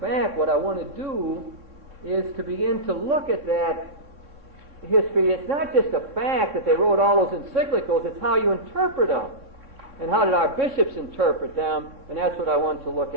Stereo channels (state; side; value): late; left; 3.6 ms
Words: what I want to do is to begin to look at that history. It's not just a fact that they wrote all those encyclicals, it's how you interpret them. And how did our bishops interpret them? And that's what I want to look